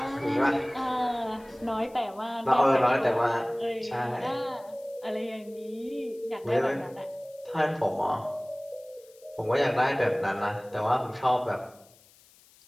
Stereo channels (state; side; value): noise; left; hiss, 27 dB below the sound